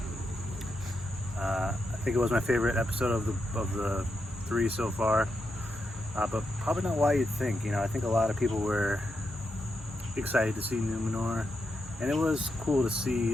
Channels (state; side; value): normal; both; correlation 0.84